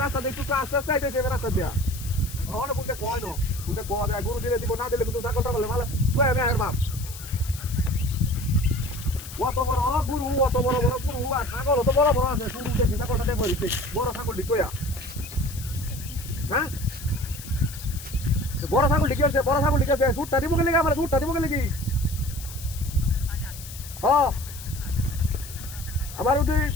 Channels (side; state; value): left; noise; hiss, 13 dB below the sound